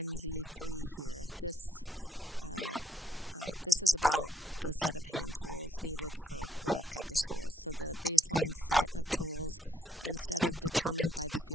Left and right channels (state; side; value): normal; both; correlation 0.71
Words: here. This This is about the set of hand tools needed for work at the schools. So the baseline set of tools, instead of determined by the